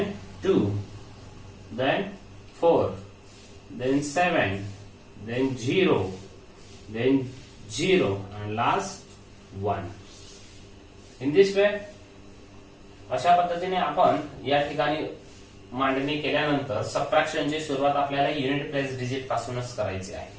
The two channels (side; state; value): both; identical; correlation 1.00